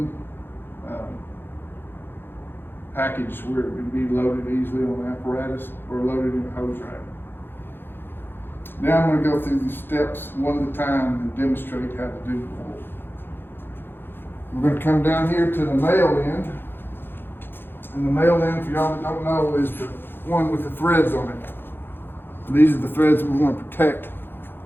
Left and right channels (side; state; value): right; late; 0.10 ms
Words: package where it can be loaded easily on the apparatus or loaded in a hose rack. Now I'm going to go through these steps one at a time and demonstrate how to do the roll. We're going to come down here to the male end. And the male end, for y'all that don't know, is the one with the threads on it. These are the threads we want to protect,